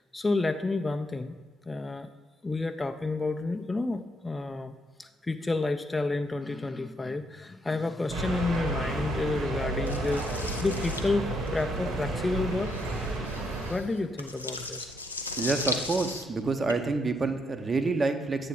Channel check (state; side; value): normal; both; correlation 0.75